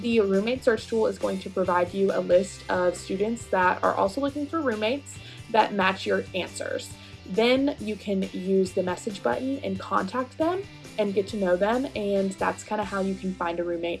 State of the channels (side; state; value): both; identical; correlation 1.00